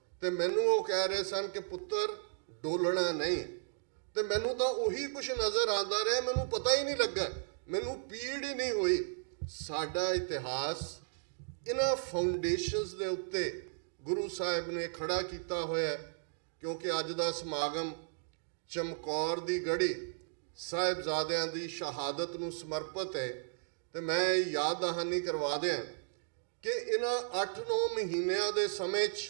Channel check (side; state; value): left; silent; digital silence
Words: ਤੇ ਮੈਨੂੰ ਉਹ ਕਹਿ ਰਹੇ ਸਨ ਕਿ ਪੁੱਤਰ ਡੋਲਣਾ ਨਹੀਂ। ਤੇ ਮੈਨੂੰ ਤਾਂ ਉਹੀ ਕੁਛ ਨਜ਼ਰ ਆਉਂਦਾ ਰਿਹਾ, ਮੈਨੂੰ ਪਤਾ ਹੀ ਨਹੀਂ ਲੱਗਾ, ਮੈਨੂੰ ਪੀੜ ਹੀ ਨਹੀਂ ਹੋਈ। ਸਾਡਾ ਇਤਿਹਾਸ ਇਹਨਾਂ ਫਾਊਂਡੇਸ਼ਨਸ ਦੇ ਉੱਤੇ ਗੁਰੂ ਸਾਹਿਬ ਨੇ ਖੜਾ ਕੀਤਾ ਹੋਇਆ, ਕਿਉਂਕਿ ਅੱਜ ਦਾ ਸਮਾਗਮ ਚਮਕੌਰ ਦੀ ਗੜੀ ਸਾਹਿਬਜ਼ਾਦਿਆਂ ਦੀ ਸ਼ਹਾਦਤ ਨੂੰ ਸਮਰਪਿਤ ਹੈ। ਤੇ ਮੈਂ ਯਾਦ ਦਹਾਨੀ ਕਰਵਾ ਦਿਆਂ ਕਿ ਇਹਨਾਂ 8-9 ਮਹੀਨਿਆਂ ਦੇ ਸਮੇਂ 'ਚ